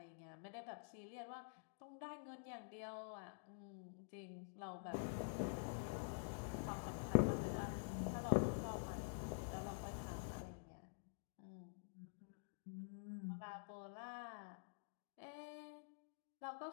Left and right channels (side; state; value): right; silent; digital silence